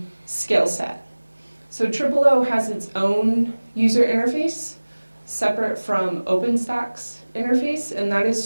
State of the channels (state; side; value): inverted; both; correlation -1.00